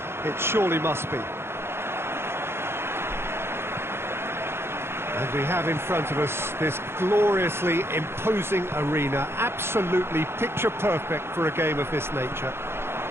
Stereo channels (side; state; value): left; late; 0.12 ms